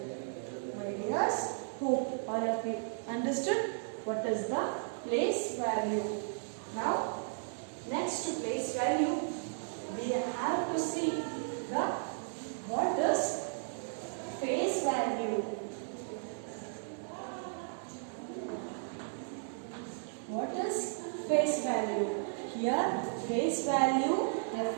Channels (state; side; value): silent; left; digital silence